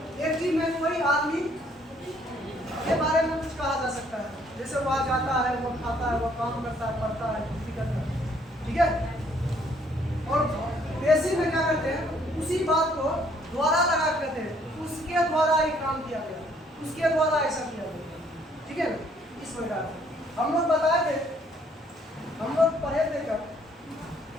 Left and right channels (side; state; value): both; normal; correlation 0.64